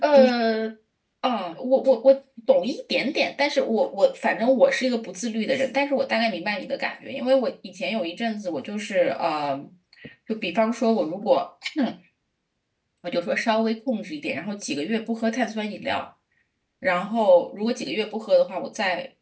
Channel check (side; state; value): both; identical; correlation 1.00